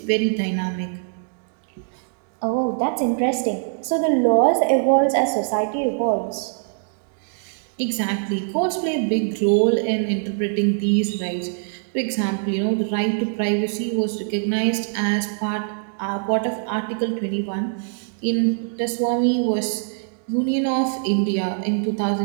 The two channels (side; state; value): left; silent; digital silence